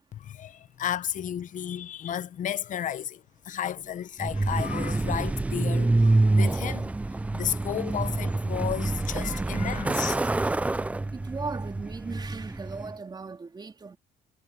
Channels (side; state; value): both; normal; correlation 0.77